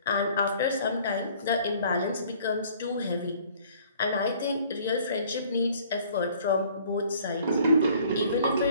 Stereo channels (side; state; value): both; inverted; correlation -0.56